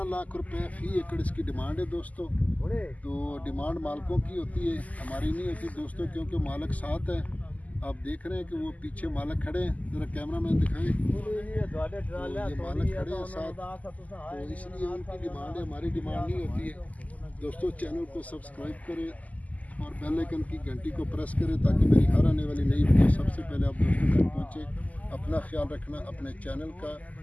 लाख रुपए फी एकड़ इसकी डिमांड है दोस्तों। तो डिमांड मालिकों की होती है, हमारी नहीं होती दोस्तों, क्योंकि मालिक साथ है। आप देख रहे हैं कि वो पीछे मालिक खड़े हैं, ज़रा कैमरा मैन दिखाएं। तो ये मालिक खड़े हैं साथ, तो इसलिए उनकी डिमांड है, हमारी डिमांड नहीं होती है दोस्तों। चैनल को सब्सक्राइब करें और बेल आइकन की घंटी को प्रेस करें ताकि मेरी हर आने वाली नई वीडियो सबसे पहले आप दोस्तों तक पहुँचे। अपना ख्याल रखना अपने चैनल का।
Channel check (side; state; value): right; late; 0.076 ms